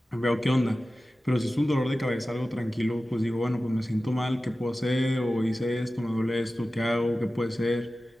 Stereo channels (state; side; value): normal; both; correlation 0.95